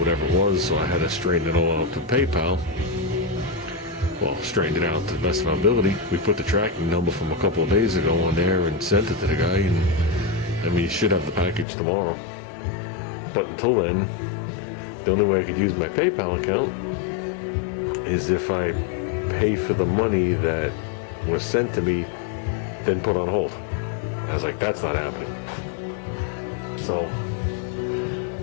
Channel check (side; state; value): right; drops out; at 11.7 s